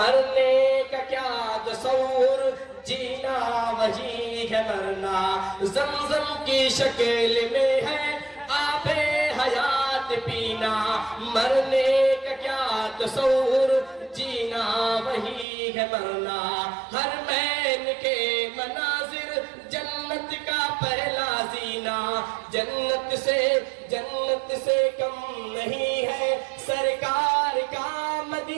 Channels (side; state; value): left; drops out; at 15.5 s